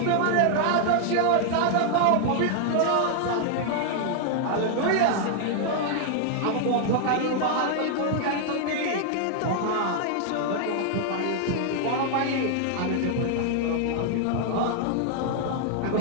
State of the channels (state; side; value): different; both; correlation 0.00